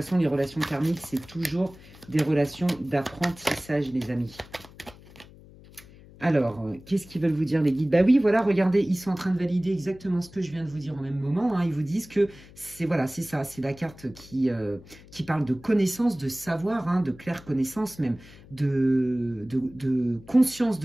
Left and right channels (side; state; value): left; noise; hum, 21 dB below the sound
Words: les relations karmiques, c'est toujours des relations d'apprentissage, les amis. Alors, qu'est-ce qu'ils veulent vous dire, les guides? Bah oui, voilà, regardez, ils sont en train de valider exactement ce que je viens de vous dire au même moment. Hein. Ils vous disent que c'est voilà, c'est ça, c'est la carte qui parle de connaissance, de savoir, hein, de claire connaissance même, de conscience